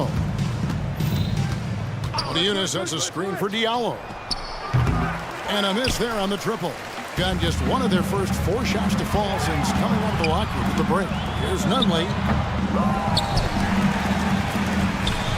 Oniunas sets a screen for Diallo. And a miss there on the triple. Got just one of their first 4 shots to fall since coming out of the locker room at the break. Here's Nunley.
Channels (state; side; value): identical; both; correlation 1.00